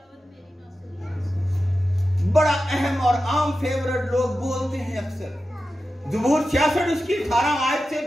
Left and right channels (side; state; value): both; normal; correlation 0.92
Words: बड़ा अहम और आम फेवरेट लोग बोलते हैं अक्सर। ज़बूर 66 उसकी 18 आयत से